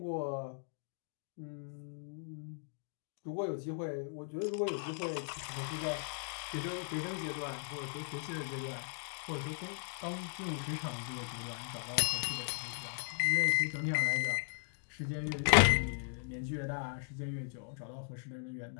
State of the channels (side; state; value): right; silent; digital silence